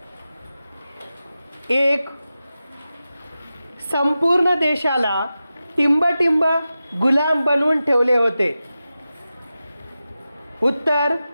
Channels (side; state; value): both; inverted; correlation -0.93